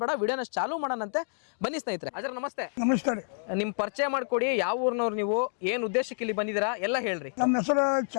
ಬೇಡ, ವಿಡಿಯೋನ ಚಾಲೂ ಮಾಡೋಣಂತೆ. ಬನ್ನಿ ಸ್ನೇಹಿತರೆ. ಅಜರ ನಮಸ್ತೆ. ನಮಸ್ಕಾರ. ನಿಮ್ಮ ಪರಿಚಯ ಮಾಡಿಕೊಡಿ, ಯಾವ ಊರಿನವ್ರು ನೀವು, ಏನು ಉದ್ದೇಶಕ್ಕೆ ಇಲ್ಲಿ ಬಂದಿದ್ದೀರಾ ಎಲ್ಲ ಹೇಳ್ರಿ. ನಮ್ಮ ಹೆಸರು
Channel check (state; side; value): silent; right; digital silence